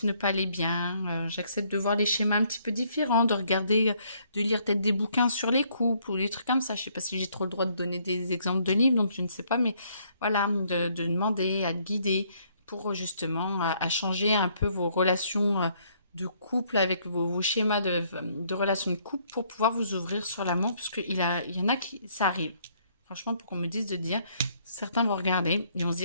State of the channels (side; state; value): both; inverted; correlation -0.67